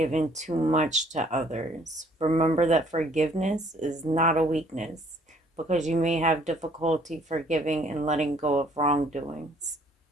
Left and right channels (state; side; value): normal; both; correlation 0.60